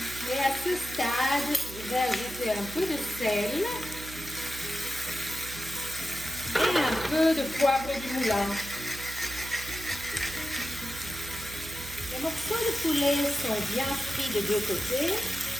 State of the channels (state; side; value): noise; right; hum, 12 dB below the sound